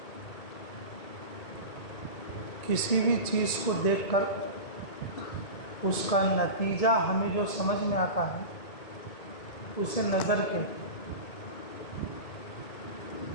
کسی بھی چیز کو دیکھ کر اس کا نتیجہ ہمیں جو سمجھ میں آتا ہے اسے نظر کہتے ہیں.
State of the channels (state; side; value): late; right; 1.9 ms